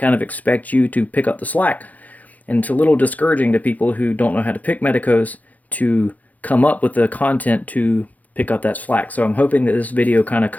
of expect you to pick up the slack. And it's a little discouraging to people who don't know how to pick Medecos to come up with the content to pick up that slack. So I'm hoping that this video kind of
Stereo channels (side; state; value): right; late; 0.078 ms